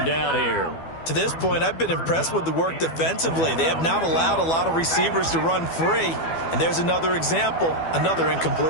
down here. To this point, I've been impressed with the work defensively. They have not allowed a lot of receivers to run free. And there's another example, another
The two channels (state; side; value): late; right; 12 ms